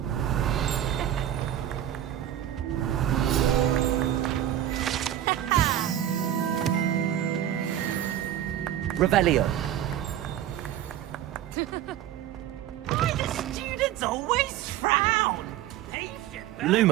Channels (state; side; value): quieter; left; 11.5 dB